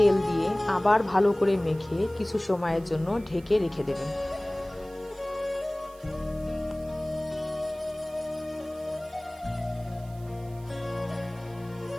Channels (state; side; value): noise; right; hiss, 25 dB below the sound